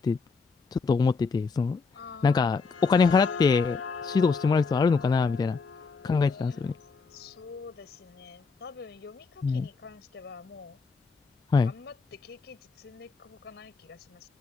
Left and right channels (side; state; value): right; quieter; 4.7 dB